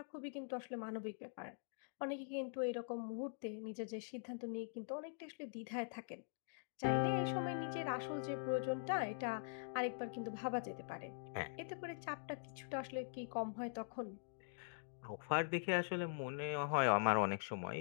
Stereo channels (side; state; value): right; silent; digital silence